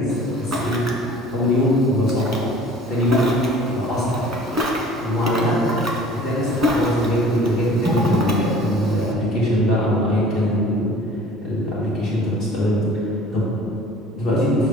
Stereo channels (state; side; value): normal; both; correlation 0.47